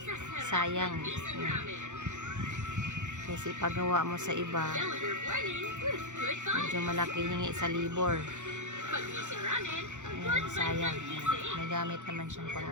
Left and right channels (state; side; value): late; left; 0.85 ms